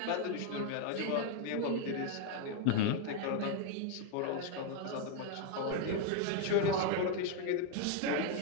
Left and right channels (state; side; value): different; both; correlation 0.01